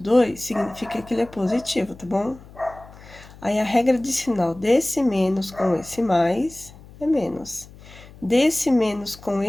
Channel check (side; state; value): left; noise; hum, 20 dB below the sound